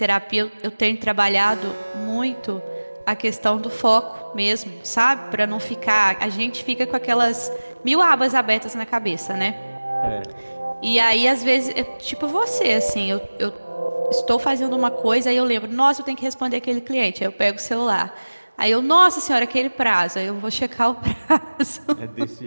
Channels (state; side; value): inverted; both; correlation -1.00